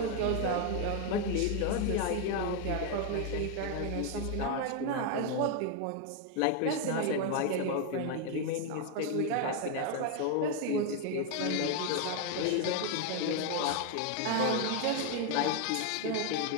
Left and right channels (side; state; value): both; different; correlation 0.01